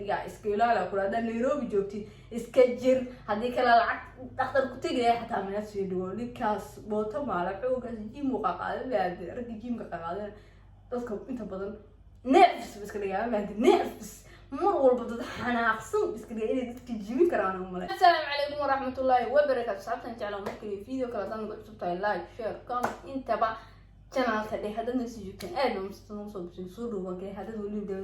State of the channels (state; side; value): identical; both; correlation 1.00